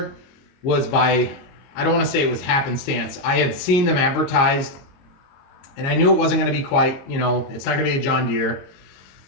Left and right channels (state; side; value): late; right; 22 ms